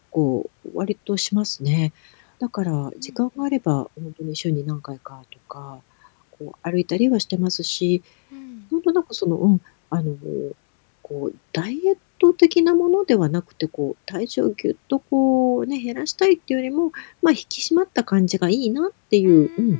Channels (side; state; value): right; silent; 66 dB below the other